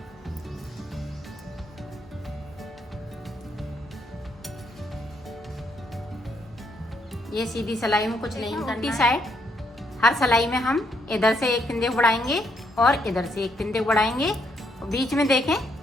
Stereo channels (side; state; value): both; normal; correlation 0.74